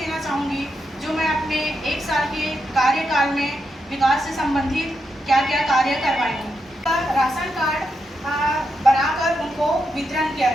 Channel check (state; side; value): normal; both; correlation 0.83